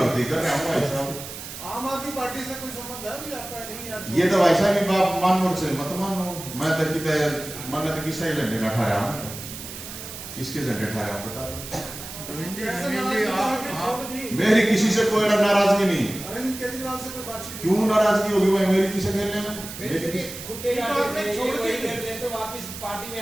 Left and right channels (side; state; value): right; noise; hiss, 11 dB below the sound